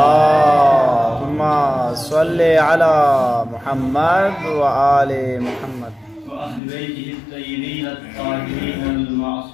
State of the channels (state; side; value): drops out; right; at 6.6 s